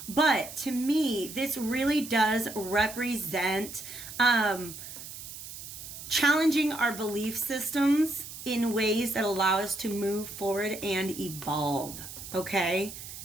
But to me, this really does represent challenging our belief systems in ways that allow us to move forward and evolve. Okay?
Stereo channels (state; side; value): noise; right; hiss, 12 dB below the sound